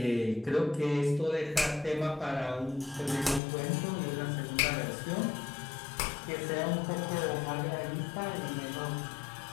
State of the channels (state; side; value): drops out; right; at 3.4 s